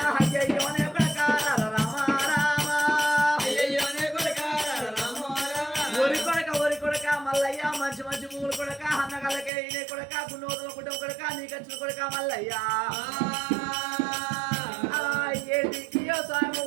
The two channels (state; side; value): drops out; left; at 9.5 s